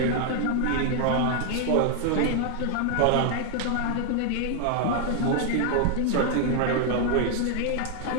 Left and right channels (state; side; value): different; both; correlation 0.00